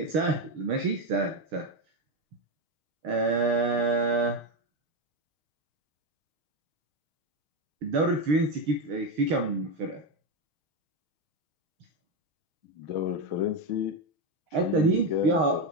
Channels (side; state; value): left; late; 6.4 ms